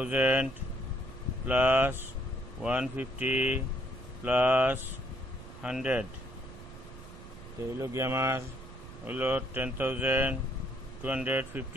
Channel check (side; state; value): right; noise; rumble, 16 dB below the sound